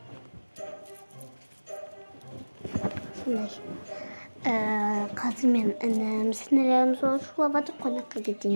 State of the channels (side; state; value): both; inverted; correlation -1.00